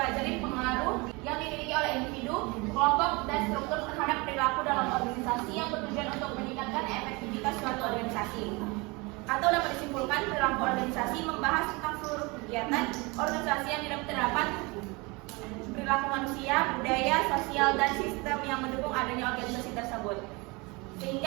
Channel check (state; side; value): quieter; left; 26.3 dB